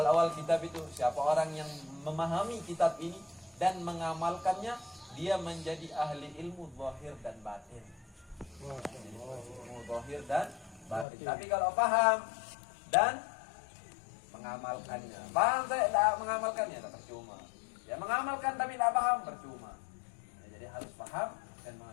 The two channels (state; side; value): drops out; right; at 11.1 s